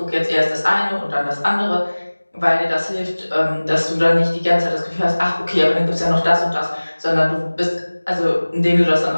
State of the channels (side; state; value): both; inverted; correlation -1.00